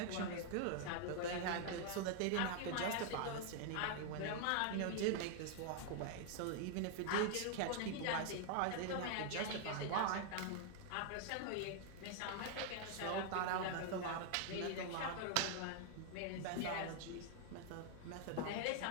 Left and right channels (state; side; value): different; both; correlation 0.00